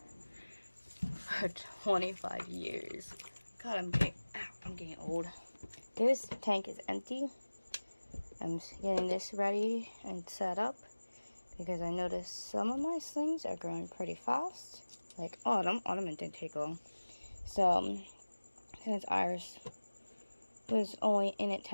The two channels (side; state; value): both; inverted; correlation -1.00